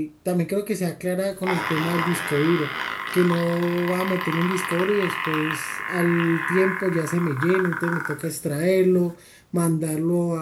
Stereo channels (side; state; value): both; identical; correlation 1.00